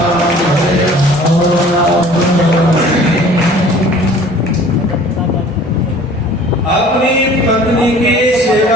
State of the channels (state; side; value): normal; both; correlation 0.49